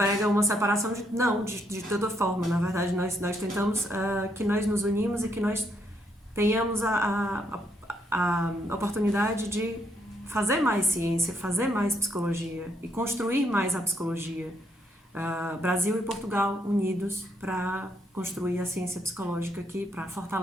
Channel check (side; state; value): both; normal; correlation 0.74